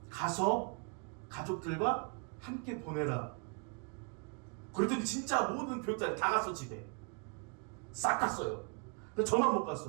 가서 가족들과 함께 보내라. 그랬더니 진짜 모든 교육자들이 다 갔어. 집에 싹 갔어요. 근데 저만 못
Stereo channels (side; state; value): left; quieter; 37.0 dB